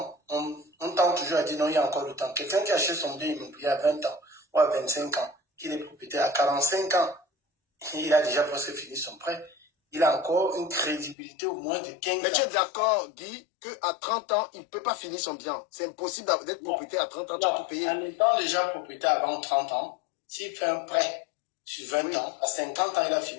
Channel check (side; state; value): right; drops out; at 11.2 s